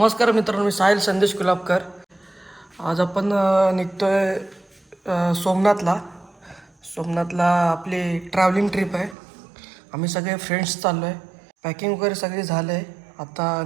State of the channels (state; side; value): drops out; left; at 9.2 s